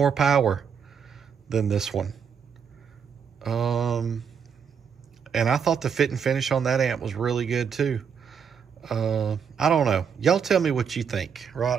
power than this one. And I thought the fit and finish on that amp was really good too. I don't know. Y'all tell me what you think,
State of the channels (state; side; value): quieter; left; 7.0 dB